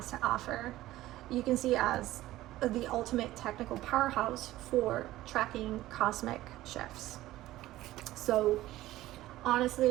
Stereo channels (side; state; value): left; quieter; 15.8 dB